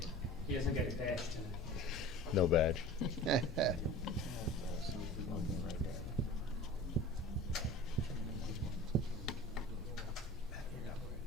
He doesn't get a badge tonight. no badge.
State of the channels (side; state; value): both; normal; correlation 0.39